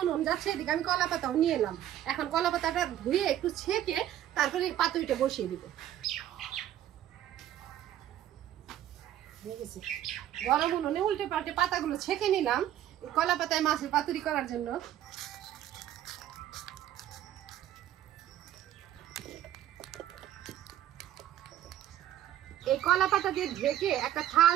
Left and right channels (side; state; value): left; quieter; 12.1 dB